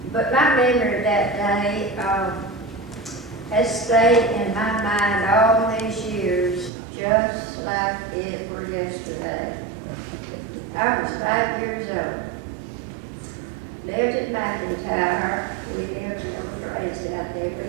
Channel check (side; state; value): left; drops out; at 6.7 s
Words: but my memory of that day has stayed in my mind all these years just like it were yesterday. I was 5 years old. Lived at McIntyre. We lived raised out there. We